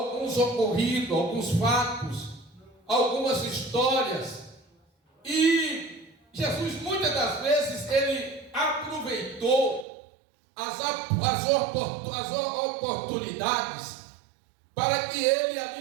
ocorridos, alguns fatos, algumas histórias, e Jesus muitas das vezes ele aproveitou as oportunidades para que ele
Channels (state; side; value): drops out; left; at 9.9 s